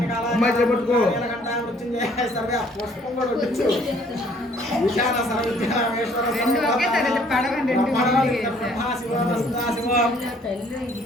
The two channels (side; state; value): both; normal; correlation 0.60